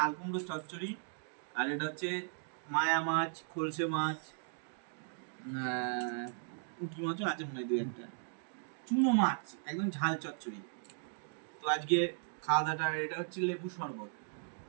কুমড়ো চচ্চড়ি। আর এটা হচ্ছে মায়া মাছ, খলসে মাছ, পুঁটি মাছও আছে মনে হয় দু একটা, চুনো মাছ, একদম ঝাল চচ্চড়ি। তো আজকে খাওয়া দাওয়াটা, এটা হচ্ছে লেবু শরবত,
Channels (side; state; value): left; silent; digital silence